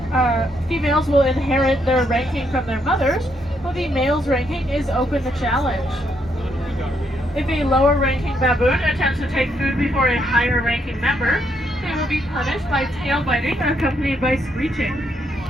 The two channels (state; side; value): normal; both; correlation 0.75